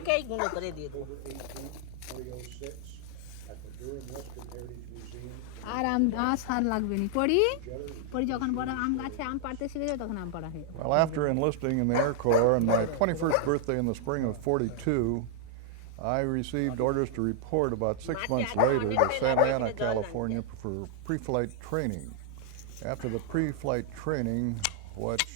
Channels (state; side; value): different; both; correlation 0.00